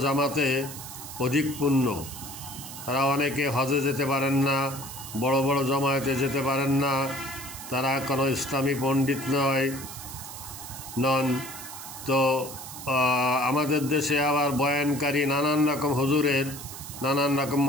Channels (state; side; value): noise; right; hiss, 11 dB below the sound